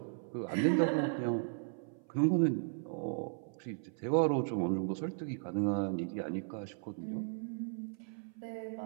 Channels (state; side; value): silent; left; 54 dB below the other